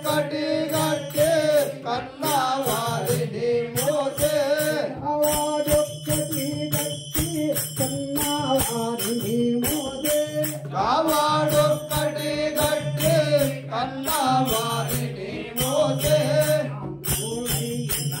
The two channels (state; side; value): identical; both; correlation 1.00